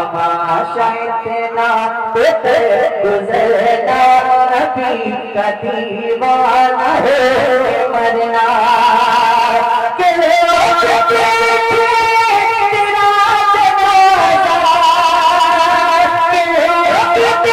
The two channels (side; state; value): both; identical; correlation 1.00